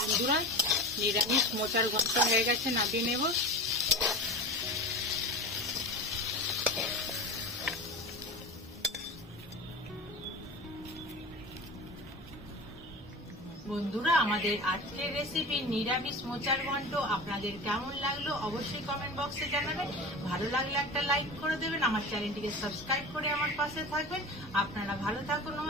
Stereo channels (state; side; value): normal; both; correlation 0.32